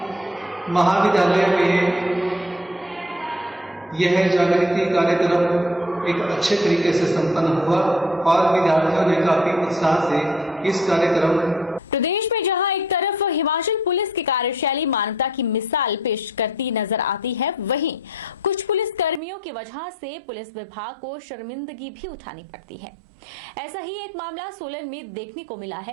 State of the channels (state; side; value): drops out; left; at 19.2 s